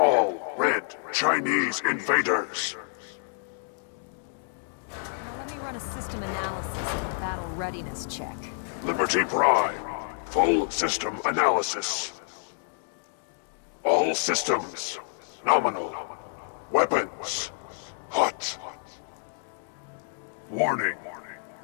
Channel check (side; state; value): right; silent; digital silence